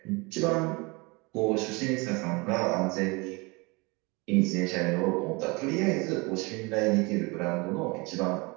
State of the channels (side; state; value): left; quieter; 26.9 dB